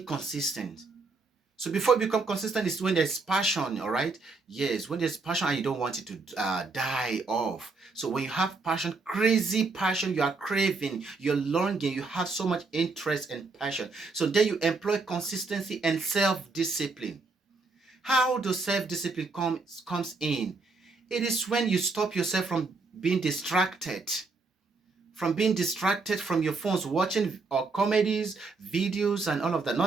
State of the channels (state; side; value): quieter; left; 3.9 dB